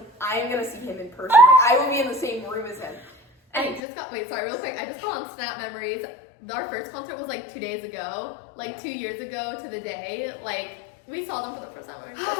I am gonna see him in person. Like, I will be in the same room as him. And I just got, wait, sorry, real quick. I just got on Snap Memories. Our first concert was like 2 days ago, like 2 years ago to the day. Like, we saw them for the first time. We're gonna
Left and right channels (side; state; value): right; drops out; at 3.8 s